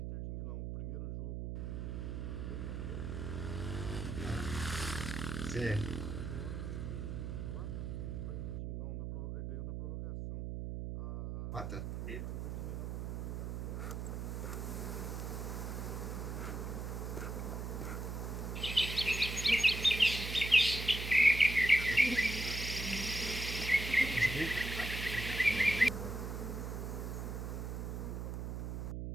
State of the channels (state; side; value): noise; right; hum, 4 dB below the sound